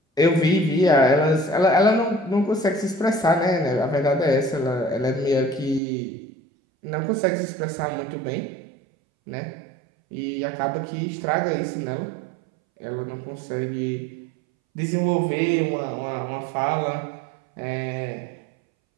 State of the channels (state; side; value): drops out; left; at 5.8 s